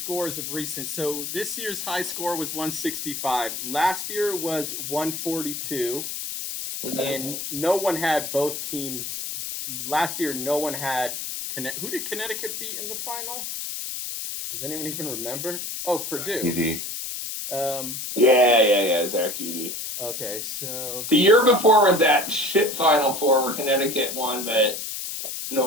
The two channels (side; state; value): left; noise; hiss, 6 dB below the sound